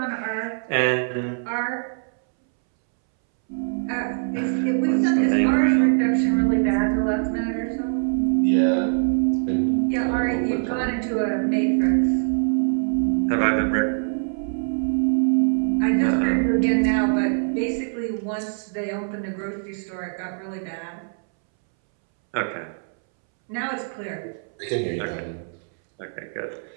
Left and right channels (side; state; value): left; silent; 63 dB below the other